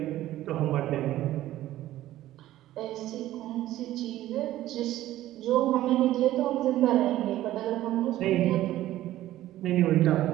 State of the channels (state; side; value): quieter; left; 14.4 dB